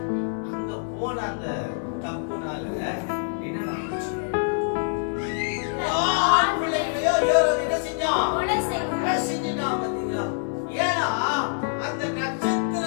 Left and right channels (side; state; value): right; silent; 61 dB below the other